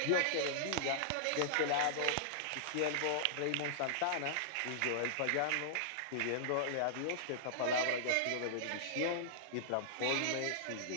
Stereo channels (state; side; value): different; both; correlation -0.01